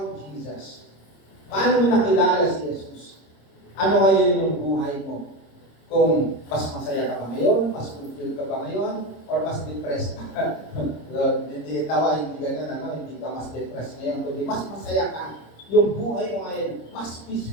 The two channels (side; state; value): right; late; 26 ms